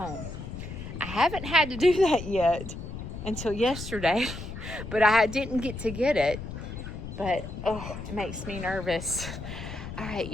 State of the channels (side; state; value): left; noise; rumble, 9 dB below the sound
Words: I haven't had to do that yet until yesterday, but I didn't get to get it. But, oh, it makes me nervous. All right,